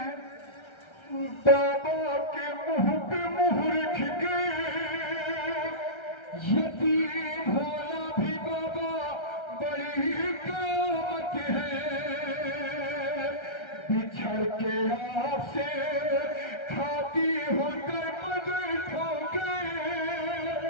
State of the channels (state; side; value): late; right; 1.3 ms